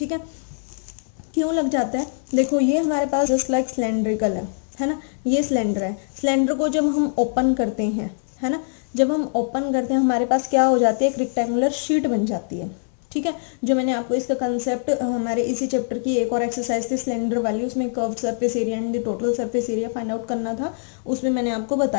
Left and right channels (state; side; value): silent; right; 63 dB below the other